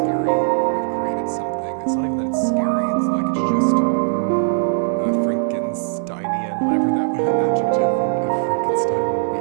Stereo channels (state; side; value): silent; left; digital silence